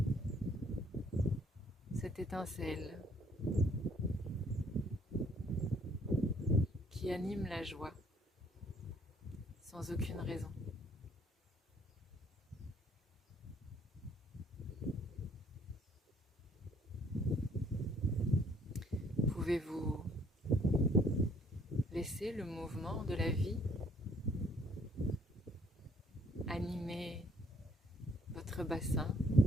cette étincelle qui anime la joie sans aucune raison. Pouvez-vous laisser le mouvement de la vie animer votre bassin,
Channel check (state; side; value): normal; both; correlation 0.64